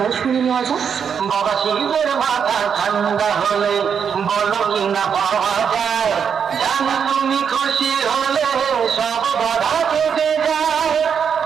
শুনে নেওয়া যাক। বাবা শিবের মাথা ঠান্ডা হলে বলো কিনা পাওয়া যায়, জানি তুমি খুশি হলে সব বাধা কেটে যায়।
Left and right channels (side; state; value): left; quieter; 7.1 dB